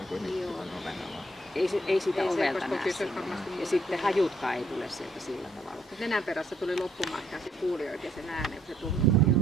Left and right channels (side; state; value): both; normal; correlation 0.68